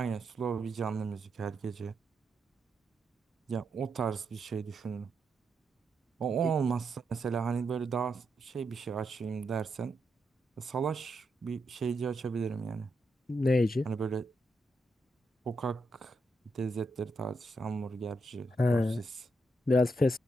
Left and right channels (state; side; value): normal; both; correlation 0.82